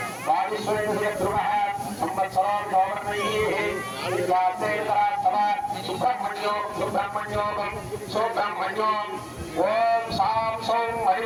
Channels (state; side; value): identical; both; correlation 1.00